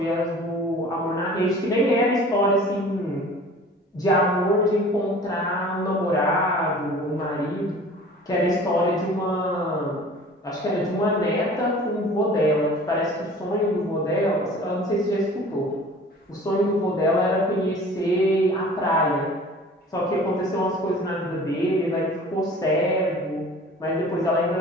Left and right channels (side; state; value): both; normal; correlation 0.45